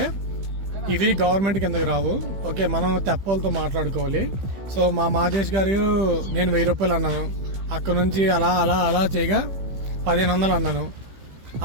ఇది గవర్నమెంట్ కిందకి రావు. ఓకే, మనం తెప్పలతో మాట్లాడుకోవాలి. సో మా మాదేశ్ గారు నేను 1000 రూపాయలు అన్నాను, అక్కడ నుంచి అలా అలా అలా చేయగా 1500 అన్నాను.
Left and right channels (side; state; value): left; late; 15 ms